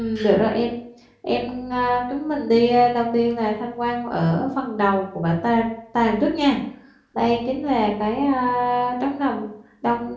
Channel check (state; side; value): identical; both; correlation 1.00